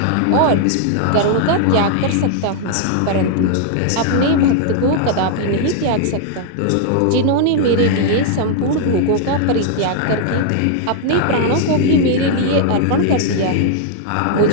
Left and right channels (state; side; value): different; both; correlation 0.00